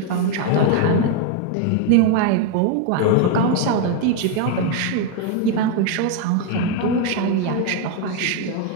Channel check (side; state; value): both; different; correlation 0.01